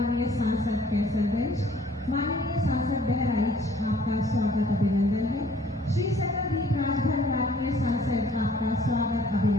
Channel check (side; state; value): both; normal; correlation 0.57